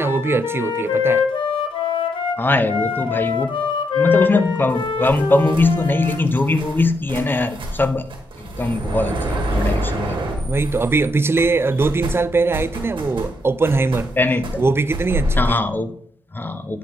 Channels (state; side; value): normal; both; correlation 0.78